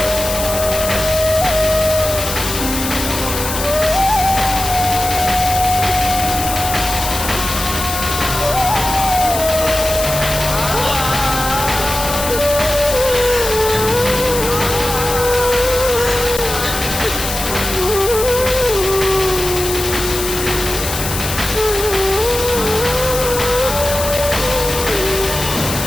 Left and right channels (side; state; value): left; noise; hiss, 5 dB below the sound